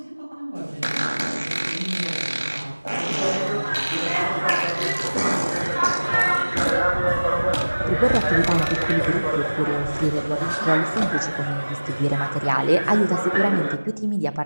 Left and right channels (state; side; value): inverted; both; correlation -1.00